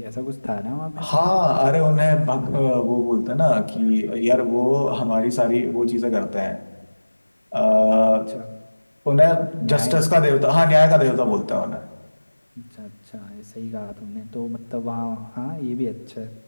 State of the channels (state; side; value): inverted; both; correlation -1.00